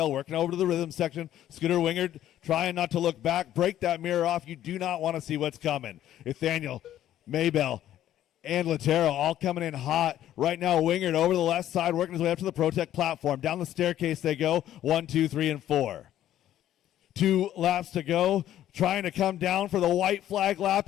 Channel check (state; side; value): quieter; right; 12.2 dB